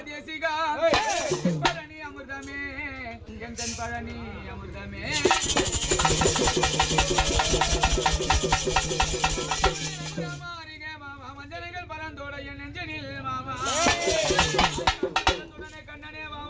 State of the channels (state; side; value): identical; both; correlation 1.00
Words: தேசிகா பழனி அமிர்தமே என் கண் பழனி அமிர்தமே மஞ்சனைகள் பரந்தோட என் நெஞ்சனில் மாமா கண்ணனே